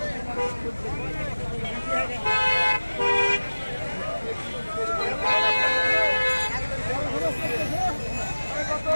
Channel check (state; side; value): inverted; both; correlation -1.00